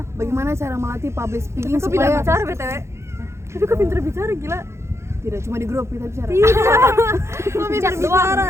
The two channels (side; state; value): left; late; 0.13 ms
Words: Bagaimana cara melatih public speaking Kok pintar supaya bicara BTW? Tapi kok pintar bicara gila. tidak cuma di grup kita bicara. Kok pintar bicara?